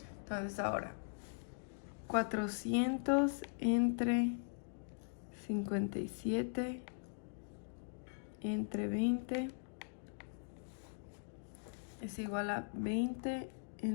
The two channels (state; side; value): silent; right; digital silence